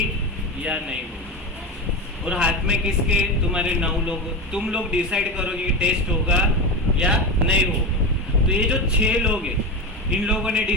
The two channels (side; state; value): both; normal; correlation 0.20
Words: या नहीं होगी, और हाथ में किसके तुम्हारे 9 लोग, तुम लोग डिसाइड करोगे कि टेस्ट होगा या नहीं होगा। तो ये जो 6 लोग हैं इन लोगों ने